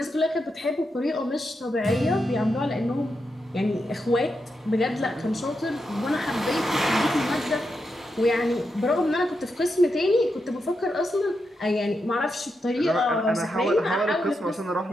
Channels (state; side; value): normal; both; correlation 0.85